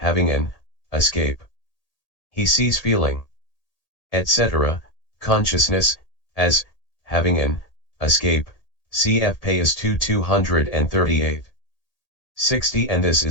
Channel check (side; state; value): right; late; 1.8 ms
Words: an escape. He sees feeling, etc., consciousness, as having an escape, cf. Payas 238. 60 And this